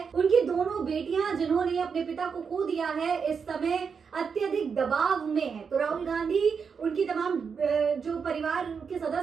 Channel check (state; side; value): quieter; left; 6.0 dB